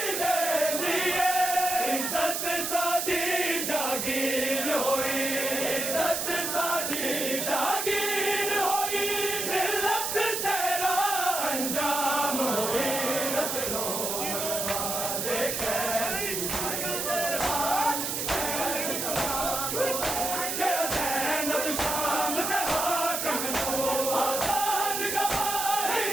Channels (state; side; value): noise; right; hiss, 1 dB below the sound